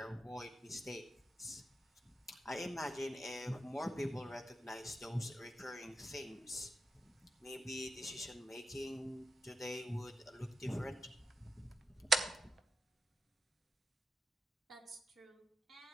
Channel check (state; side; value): normal; both; correlation 0.88